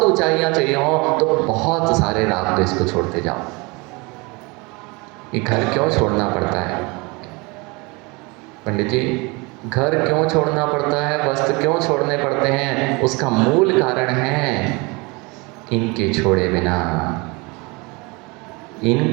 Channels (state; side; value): quieter; left; 27.0 dB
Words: ऊंचाइयां चाहिए हो तो बहुत सारे राग द्वेष को छोड़ते जाओ। ये घर क्यों छोड़ना पड़ता है पंडित जी? घर क्यों छोड़ना पड़ता है, वस्त्र क्यों छोड़ने पड़ते हैं? उसका मूल कारण है इनके छोड़े बिना,